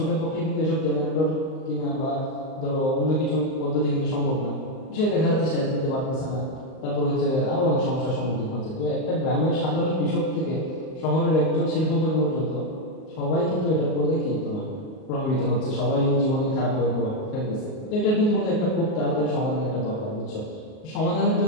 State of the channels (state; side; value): late; right; 38 ms